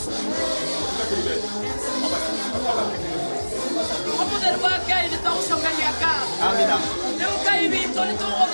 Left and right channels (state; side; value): inverted; both; correlation -1.00